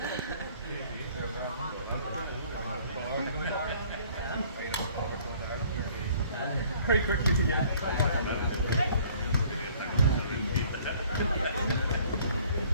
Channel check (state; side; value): inverted; both; correlation -0.56